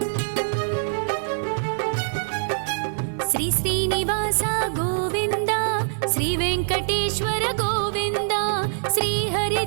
श्रीनिवास गोविन्द श्री वेङ्कटेश्वर गोविन्द श्री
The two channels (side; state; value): left; silent; digital silence